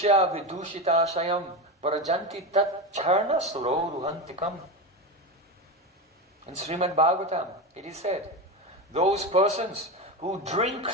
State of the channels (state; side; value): normal; both; correlation 0.19